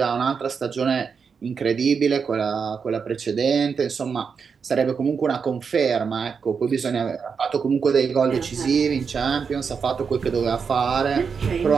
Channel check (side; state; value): left; quieter; 5.9 dB